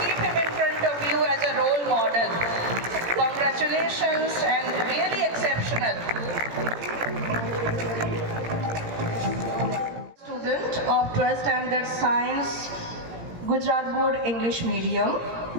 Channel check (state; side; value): late; left; 17 ms